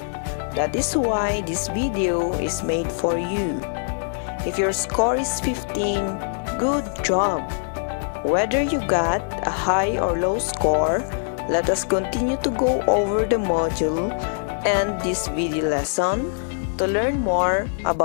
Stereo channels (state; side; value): silent; right; 63 dB below the other